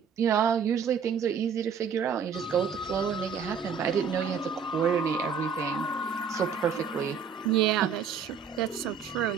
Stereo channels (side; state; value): left; quieter; 6.6 dB